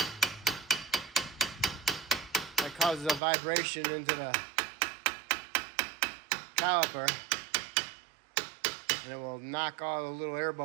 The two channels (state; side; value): drops out; left; at 3.2 s